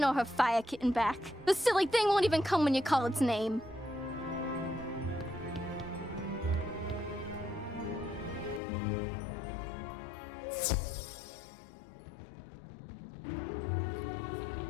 her fire kitten back. The silly thing won't even come when you call its name.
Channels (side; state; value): right; drops out; at 8.6 s